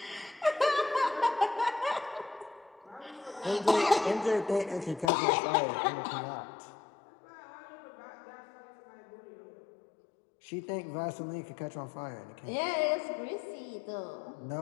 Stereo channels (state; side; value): drops out; right; at 5.1 s